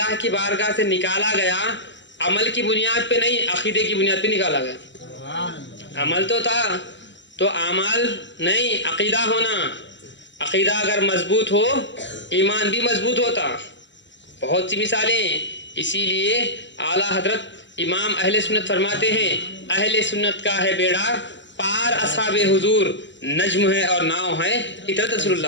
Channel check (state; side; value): late; right; 0.53 ms